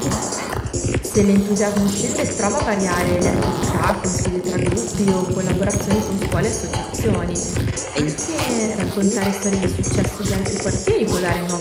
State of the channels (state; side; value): identical; both; correlation 1.00